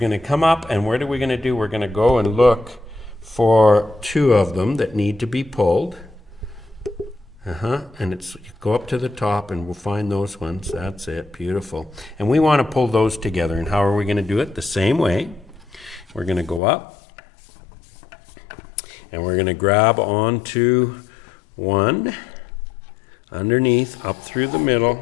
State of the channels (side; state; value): right; drops out; at 16.6 s